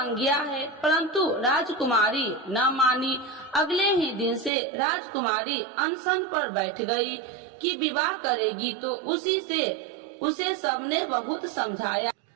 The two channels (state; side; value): drops out; left; at 4.5 s